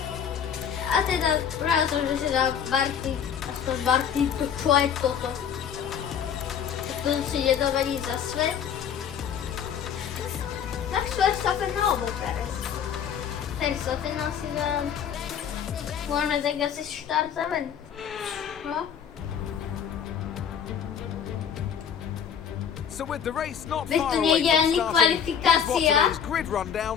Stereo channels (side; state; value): right; quieter; 8.1 dB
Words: A teda práve som, že si dal Barty, aspoň Barty, to čo je toto? To si ide dovediť za svet. Max Verstappen alebo Perez? Verstappen asi dám. Môžeme tak asi štartovať. No. So with the race not Veď far tu away nejde from ani starting, here's what kvalifikácia. today's grid rundown